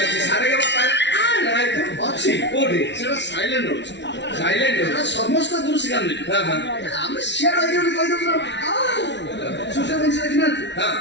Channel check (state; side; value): late; right; 0.51 ms